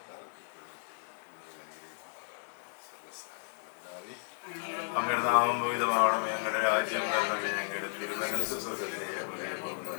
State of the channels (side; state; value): right; silent; 55 dB below the other